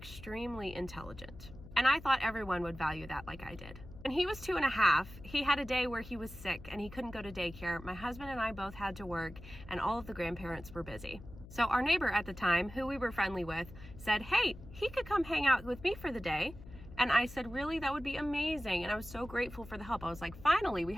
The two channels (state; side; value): noise; left; hum, 16 dB below the sound